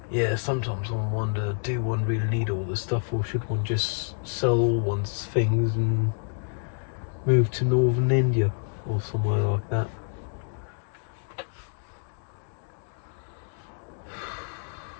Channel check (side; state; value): right; silent; digital silence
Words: Yeah, sometimes I wonder, do one really need all this stuff, or should one just sell all one's things and move to northern India or somewhere like that?